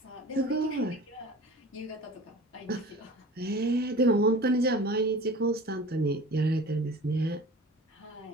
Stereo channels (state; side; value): normal; both; correlation 0.40